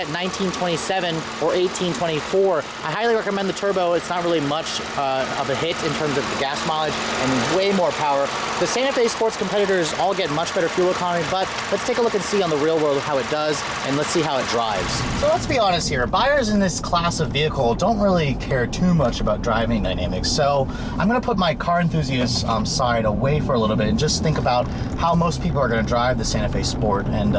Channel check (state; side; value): identical; both; correlation 1.00